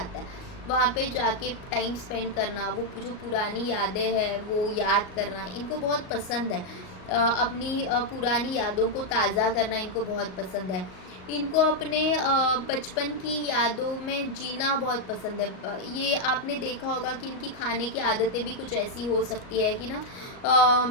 है वहाँ पे जाके टाइम स्पेंड करना। वो जो पुरानी यादें हैं वो याद करना इनको बहुत पसंद है। अपनी पुरानी यादों को ताज़ा करना इनको बहुत पसंद है। इनको अपने बचपन की यादों में जीना बहुत पसंद है। ये आपने देखा होगा कि इनकी खाने की आदतें भी कुछ ऐसी हो सकती है कि ना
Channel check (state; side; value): late; right; 38 ms